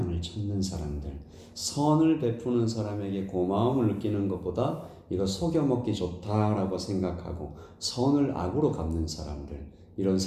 찾는 사람들, 선을 베푸는 사람에게 고마움을 느끼는 것보다 이거 속여먹기 좋다라고 생각하고 선을 악으로 갚는 사람들, 이런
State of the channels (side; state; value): both; identical; correlation 1.00